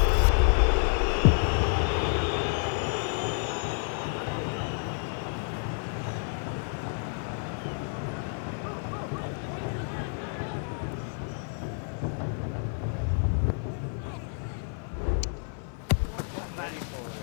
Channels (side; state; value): right; silent; 55 dB below the other